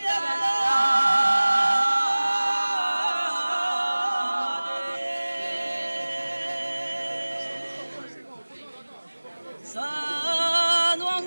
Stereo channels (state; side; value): inverted; both; correlation -1.00